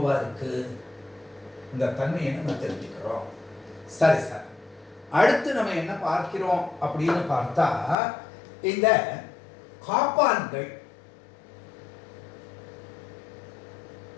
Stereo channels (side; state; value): right; drops out; at 8.0 s